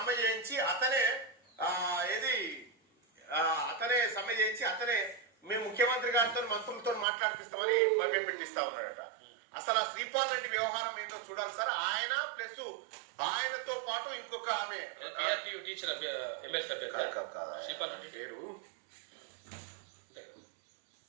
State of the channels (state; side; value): drops out; left; at 7.1 s